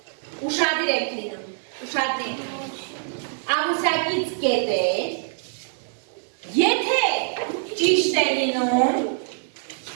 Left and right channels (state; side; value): silent; left; 61 dB below the other